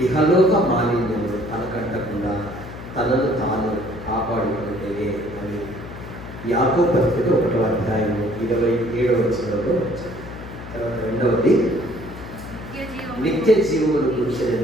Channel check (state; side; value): noise; left; hum, 12 dB below the sound